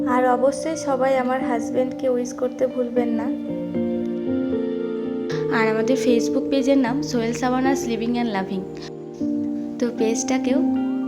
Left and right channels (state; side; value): identical; both; correlation 1.00